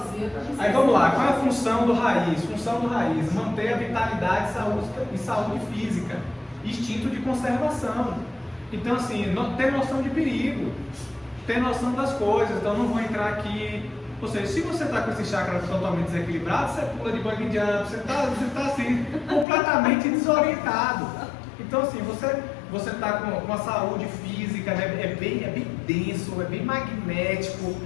Aí vamos lá, qual é a função do raiz? Função do raiz, manter a vitalidade e saúde física, instinto de conservação. Então assim, ter noção de perigo, ter noção das coisas, então não vou entrar aqui. Ou seja, se você está com esse chakra totalmente desequilibrado, você pula de bug jump, você está assim, completamente desorientado. Então assim, você está com a saúde física, né? é bem denso, é bem magnético.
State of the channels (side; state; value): right; drops out; at 19.5 s